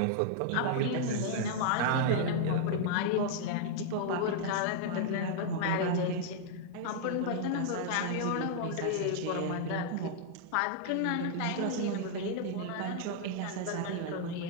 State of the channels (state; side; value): different; both; correlation -0.01